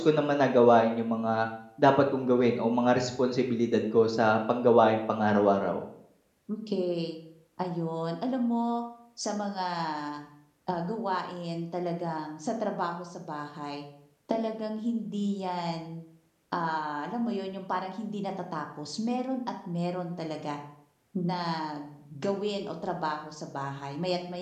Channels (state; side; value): identical; both; correlation 1.00